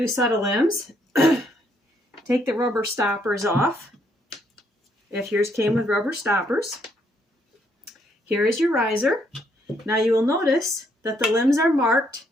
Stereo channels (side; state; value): both; normal; correlation 0.71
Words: set of limbs, take the rubber stoppers off, if yours came with rubber stoppers. Here is your riser. Now you will notice that the limbs are marked,